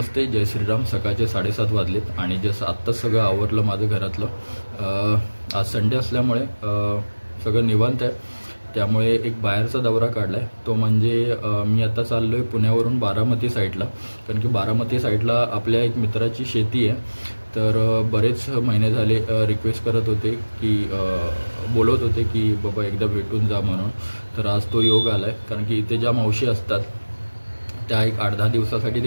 जय श्रीराम. सकाळचे 7:30 वाजलेत आणि जसं आत्ताच सगळं आवरलं माझं घरातलं. आज संडे असल्यामुळे सगळं निवांत आहे. त्यामुळे एक बाहेरचा दौरा काढला आहे. तो म्हणजे मी आता चाललो आहे पुण्यावरून बारामती साईडला, कारण की बारामती साईडला आपल्या एक मित्राची शेती आहे. तर बरेच महिने झाले रिक्वेस्ट करत होते की बोलत होते की बाबा एकदा भेटून जा म्हणून. तर आज तो योग आला आहे, कारण की इथे ज्या मावशी असतात त्या एक 8-10 दिवसासाठी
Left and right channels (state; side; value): inverted; both; correlation -1.00